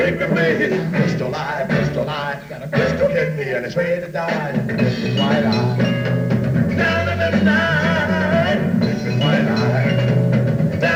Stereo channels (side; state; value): both; identical; correlation 1.00